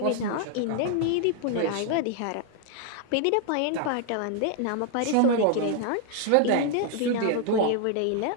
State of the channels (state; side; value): different; both; correlation 0.00